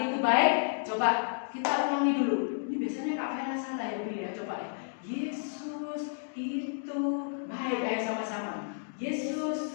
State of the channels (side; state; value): right; silent; digital silence